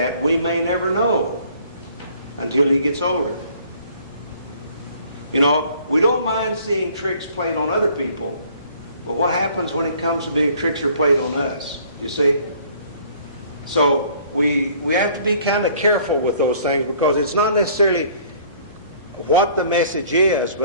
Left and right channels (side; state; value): both; inverted; correlation -0.56